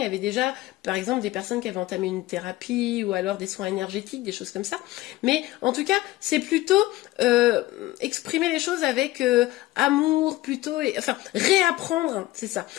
y avait déjà, par exemple, des personnes qui avaient entamé une thérapie ou alors des soins énergétiques, des choses comme ça. Mais en tout cas, c'est plutôt exprimer les choses avec amour, plutôt, enfin, réapprendre, c'est ça,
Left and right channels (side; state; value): right; quieter; 17.7 dB